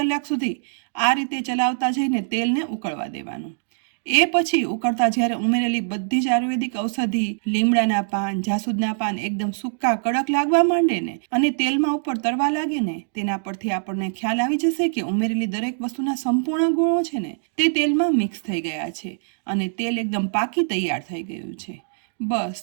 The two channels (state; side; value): silent; left; digital silence